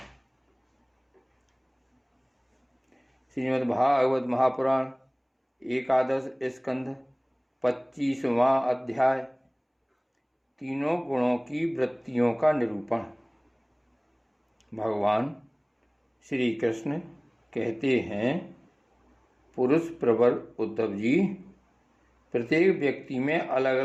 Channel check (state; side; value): identical; both; correlation 1.00